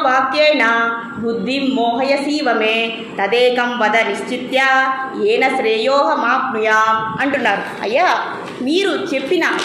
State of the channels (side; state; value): both; identical; correlation 1.00